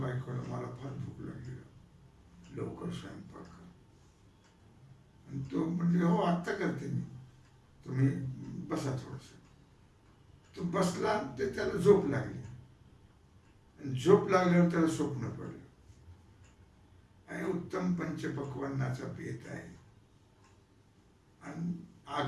बायकोला, मला फार भूक लागली, लवकर स्वयंपाक कर। आणि तो म्हणजे हो आत्ता करते मी, तुम्ही बसा थोडस। तो बसला, ते त्याला झोप लागली। झोप लागल्यावर त्याला स्वप्न पडलं आणि उत्तम पंचपक्वान्नाचा पेत आहे आणि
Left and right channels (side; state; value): both; identical; correlation 1.00